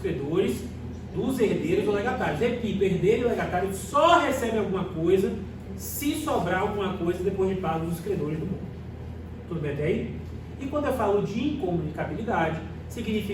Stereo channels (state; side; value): identical; both; correlation 1.00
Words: dos herdeiros ou legatários. Repito, herdeiro e legatário só recebe alguma coisa se sobrar alguma coisa depois de pagos os credores do mundo. Tudo bem até aí? E quando eu falo de incomunicabilidade,